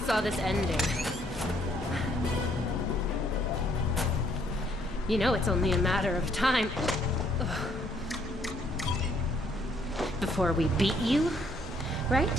this ending. You know it's only a matter of time before we beat you,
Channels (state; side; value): normal; both; correlation 0.67